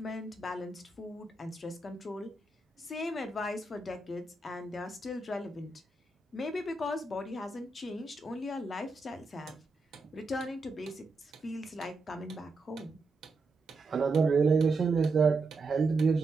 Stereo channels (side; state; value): left; quieter; 3.4 dB